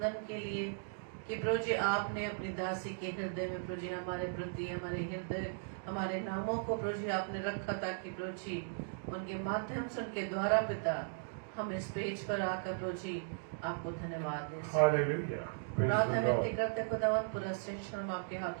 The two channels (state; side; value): silent; left; digital silence